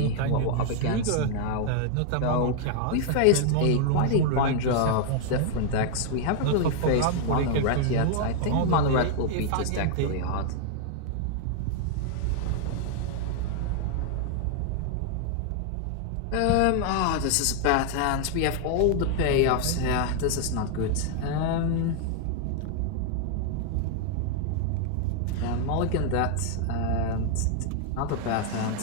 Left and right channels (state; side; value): different; both; correlation 0.00